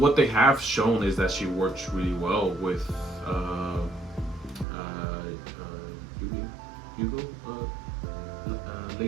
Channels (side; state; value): left; drops out; at 4.7 s